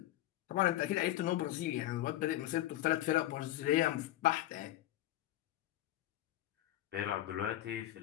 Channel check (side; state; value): right; quieter; 14.3 dB